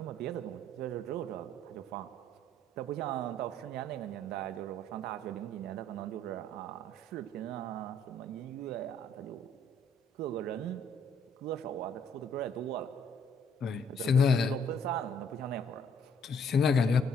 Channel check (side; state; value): both; normal; correlation 0.63